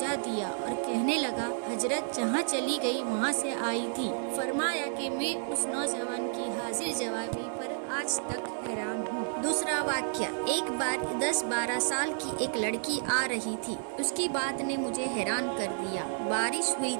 دیا اور کہنے لگا حضرت جہاں چلی گئی وہاں سے آئی تھی۔ فرمایا کہ میں اس نوجوان کی حاضر جوابی پر آج تک حیران ہوں۔ دوسرا واقعہ، ایک بار 10-12 سال کی ایک لڑکی آ رہی تھی، اس کی بات نے مجھے حیران کر دیا۔ بارش ہوئی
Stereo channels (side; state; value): left; silent; 57 dB below the other